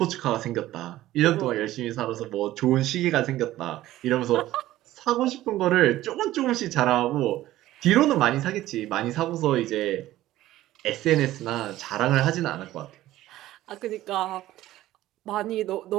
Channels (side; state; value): left; quieter; 15.1 dB